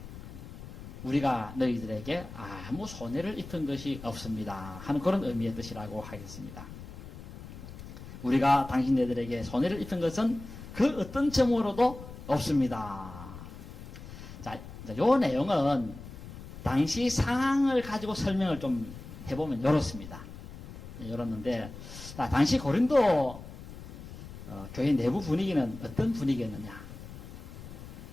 우리가 너희들에게 아무 손해를 입힌 것이 없습니다 하는 그런 의미의 뜻이라고 하겠습니다. 우리가 당신네들에게 손해를 입힌 것은 그 어떤 점으로도 없습니다. 자, 요 내용은 당시 상황을 가지고 설명을 좀 해보면 이렇습니다. 이렇는데, 당시 고린도 교회 내부 분위기는 어떤 분위기였느냐?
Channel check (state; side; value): noise; left; rumble, 13 dB below the sound